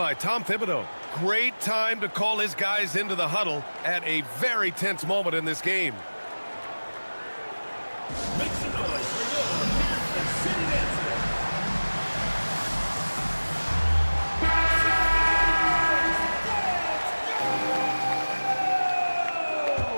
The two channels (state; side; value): inverted; both; correlation -1.00